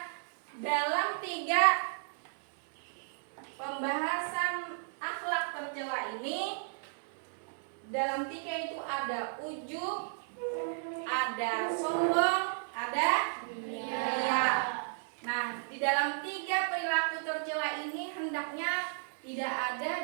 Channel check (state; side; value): silent; left; digital silence